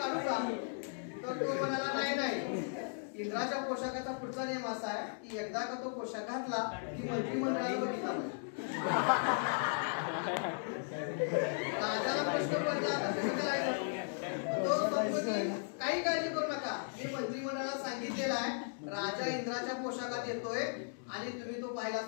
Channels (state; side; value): silent; right; 53 dB below the other